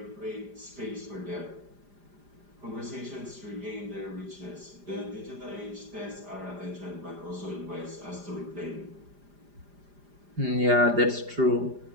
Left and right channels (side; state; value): left; late; 5.0 ms